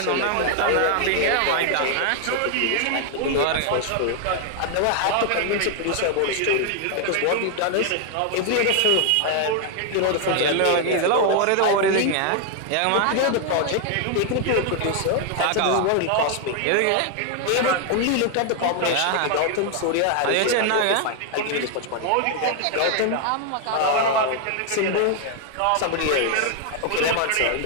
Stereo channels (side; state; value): both; different; correlation 0.00